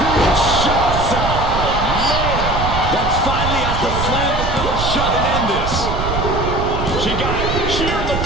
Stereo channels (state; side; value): noise; right; rumble, 4 dB below the sound